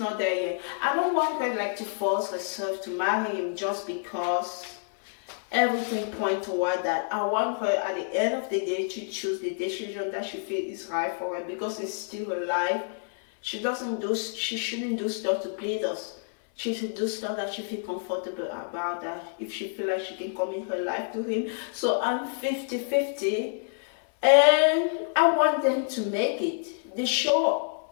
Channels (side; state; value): right; silent; 59 dB below the other